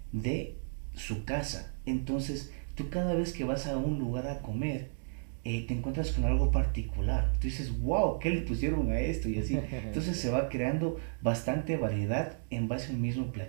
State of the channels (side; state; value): left; silent; digital silence